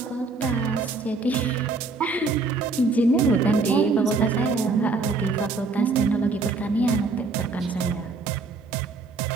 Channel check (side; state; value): left; quieter; 3.9 dB